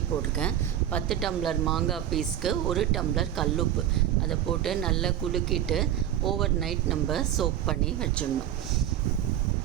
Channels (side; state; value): left; quieter; 11.2 dB